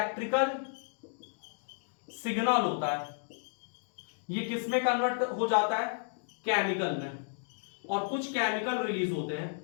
सिग्नल होता है, ये किस में कन्वर्ट हो जाता है? केमिकल में। और कुछ केमिकल रिलीज होते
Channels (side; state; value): right; silent; digital silence